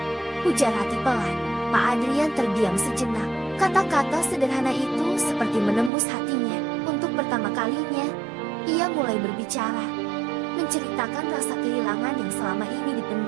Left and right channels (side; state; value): left; drops out; at 5.9 s